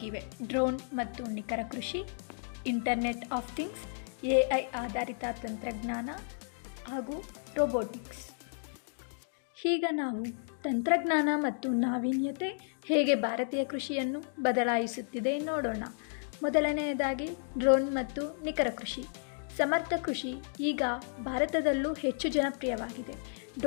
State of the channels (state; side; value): silent; right; digital silence